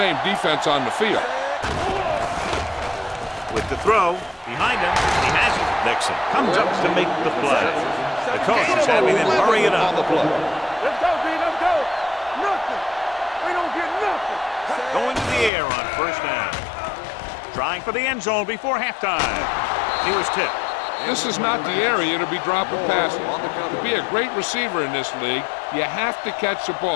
defense on the field. With the throw, behind him, he has it. Nixon comes up to make the play. The coach is having them hurry it up. Let's go, D, let's go. Nothing. We don't get nothing. Going to the air on 1st down. Trying for the end zone before halftime. He was tipped. This is not the area to be dropping passes. To be a great receiver in this league, you have to catch the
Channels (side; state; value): right; drops out; at 15.5 s